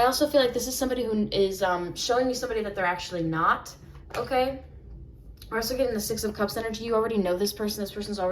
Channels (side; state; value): both; identical; correlation 1.00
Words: also feel like this is somebody who is showing you somebody that they're actually not, okay? We're also getting the 6 of Cups energy. You already know this person. This person's